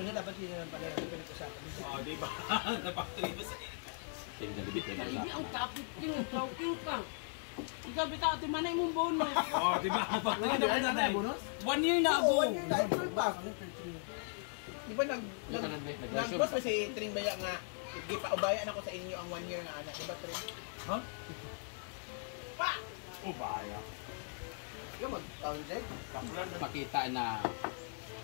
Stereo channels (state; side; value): silent; right; 52 dB below the other